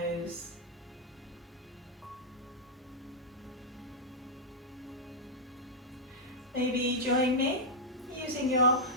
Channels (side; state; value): both; normal; correlation -0.06